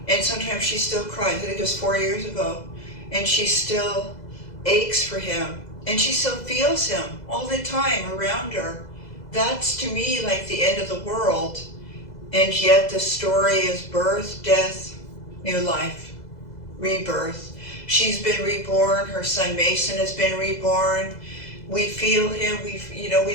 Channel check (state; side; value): late; right; 2.0 ms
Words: And sometimes she still cries. I think it was 4 years ago. And she still aches for him. And she still feels him all the time around her. That's to me like the end of the world. And yet the story is birth, death, new life, rebirth. She's been reborn. Her son Mason has been reborn. We feel him. We